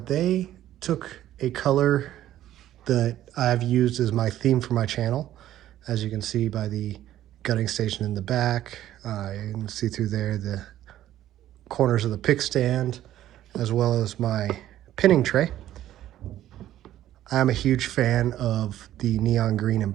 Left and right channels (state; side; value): quieter; left; 12.9 dB